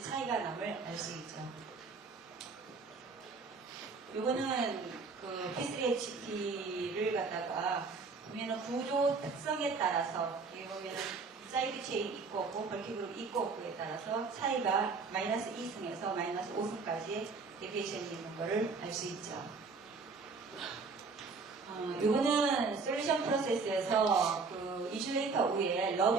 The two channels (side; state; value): left; quieter; 4.5 dB